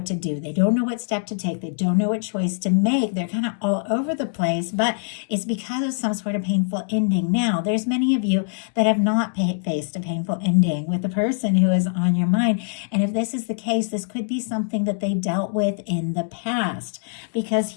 to do. They don't know what step to take. They don't know what choice to make. They're kind of all over the place, but it's because of some sort of painful ending. Now, There's many of you that have not faced a painful ending with the person who is on your mind. And if this is the case, this could be something that they dealt with in the past, because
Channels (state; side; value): silent; right; digital silence